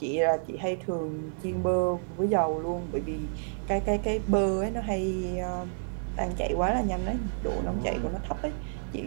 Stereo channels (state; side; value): silent; left; digital silence